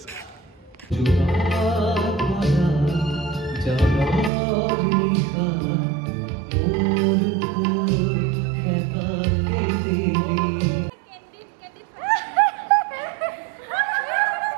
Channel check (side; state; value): left; drops out; at 4.3 s